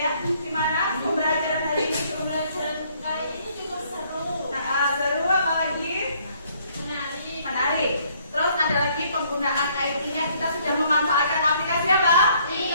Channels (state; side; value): inverted; both; correlation -0.64